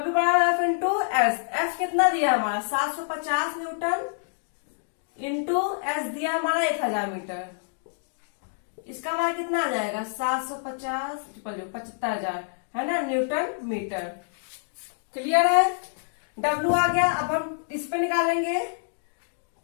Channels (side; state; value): right; silent; digital silence